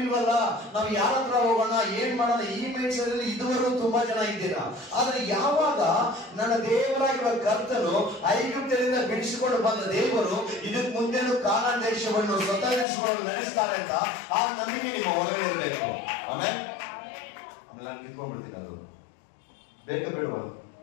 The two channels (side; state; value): right; drops out; at 12.9 s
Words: ಇಲ್ವಲ್ಲ, ನಾವು ಯಾರ ಹತ್ರ ಹೋಗೋಣ, ಏನ್ ಮಾಡೋಣ? ಈ ಮೈಂಡ್ ಸೆಟ್ ಅಲ್ಲಿ ಇದುವರೆಗೂ ತುಂಬಾ ಜನ ಇದ್ದೀರಾ. ಆದ್ರೆ ಯಾವಾಗ ನನ್ನ ದೇವರಾಗಿರುವ ಕರ್ತನು ಐಗುಪ್ತದಿಂದ ಬಿಡಿಸಿಕೊಂಡು ಬಂದ ದೇವರು ಇದಕ್ಕೆ ಮುಂದೆನೂ ಕಾನಾನ್ ದೇಶವನ್ನು ಸ್ವತಂತ್ರಿಸಿಕೊಂಡು ನಡೆಸ್ತಾರೆ ಅಂತ ಆ ನಂಬಿಕೆ ನಿಮ್ಮ ಒಳಗಡೆ ಇರಬೇಕು. ಆಮೇಲೆ ನಾನು ಕಿತ್ಕೊಂಡ್ಬಿಡ್ತೀನಿ. ಅದು ಬೇಕಾ ಬೇಡವಾ?